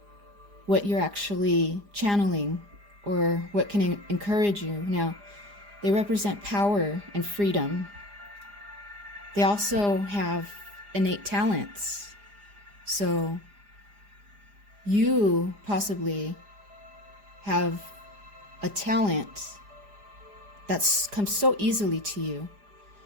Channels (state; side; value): late; left; 4.9 ms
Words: what you're actually channeling or what can encourage you. Now, they represent power and freedom. They also have innate talents. So you possibly have a talent that's comes so easily to you